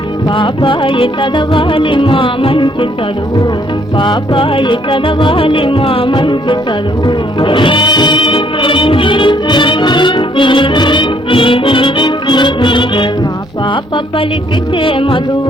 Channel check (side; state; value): both; normal; correlation 0.66